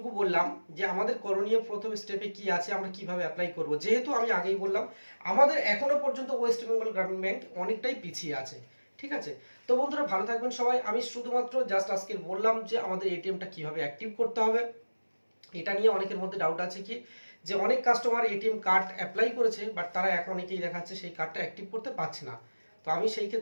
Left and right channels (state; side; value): inverted; both; correlation -1.00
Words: বললাম যে আমাদের করণীয় প্রথম স্টেপে কি আছে, আমরা কিভাবে অ্যাপ্লাই করব। যেহেতু আমি আগেই বললাম আমাদের এখনো পর্যন্ত ওয়েস্ট বেঙ্গল গ্রামীণ ব্যাংক অনেকটাই পিছিয়ে আছে, ঠিক আছে। তো বন্ধুরা ভালো থাকবেন সবাই। আমি শুধুমাত্র জাস্ট আজকে বললাম যে আমাদের এটিএমটা কিভাবে অ্যাক্টিভ করতে হবে। এটা নিয়ে অনেকের মধ্যে ডাউট আছে কি, যে অনেক কাস্টমার এটিএম কার্ড অ্যাপ্লাই করেছে বাট তারা এখন অনেকেই দেখাচ্ছে সেই কার্ডটা অ্যাক্টিভ করতে পারছে না। তো আমি সেই